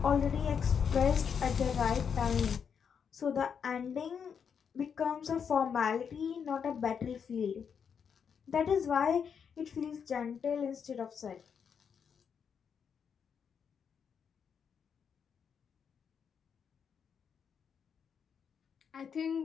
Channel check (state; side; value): quieter; right; 7.0 dB